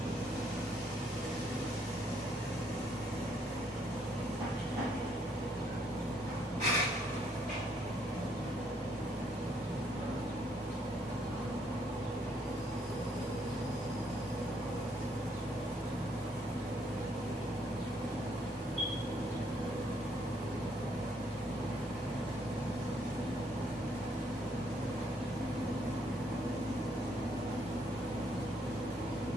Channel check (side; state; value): both; normal; correlation 0.70